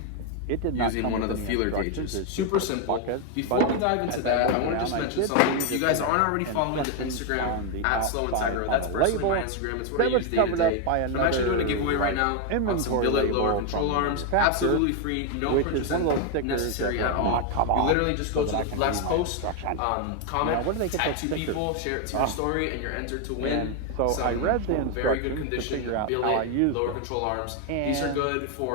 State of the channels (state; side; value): different; both; correlation 0.01